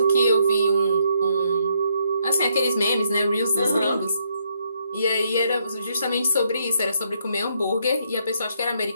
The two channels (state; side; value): inverted; both; correlation -0.73